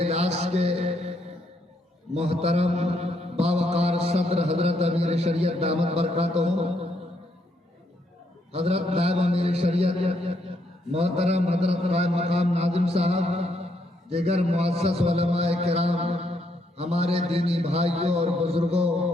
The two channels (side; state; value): both; normal; correlation 0.74